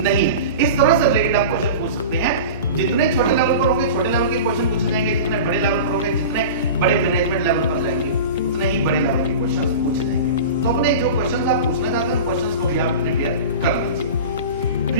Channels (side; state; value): both; inverted; correlation -0.32